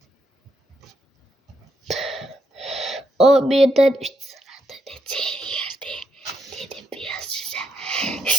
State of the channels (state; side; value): normal; both; correlation 0.78